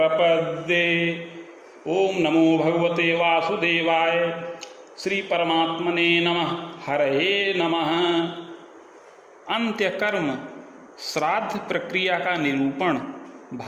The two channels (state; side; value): identical; both; correlation 1.00